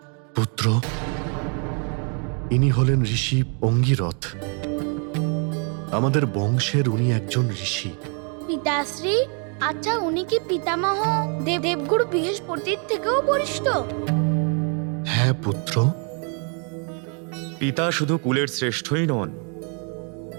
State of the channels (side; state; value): left; quieter; 38.9 dB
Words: পুত্র, ইনি হলেন ঋষি অঙ্গিরথ। আমাদের বংশের উনি একজন ঋষি। পিতাশ্রী, আচ্ছা উনি কি পিতামহ দেবগুরু বৃহস্পতির থেকেও বরিষ্ঠ? হ্যাঁ পুত্র। পিতা শুধু কুলের শ্রেষ্ঠই নন,